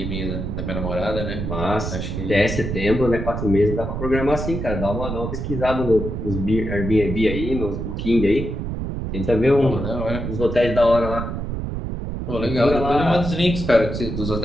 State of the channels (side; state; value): right; noise; rumble, 4 dB below the sound